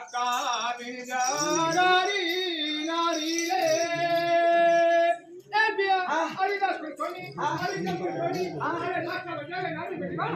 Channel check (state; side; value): identical; both; correlation 1.00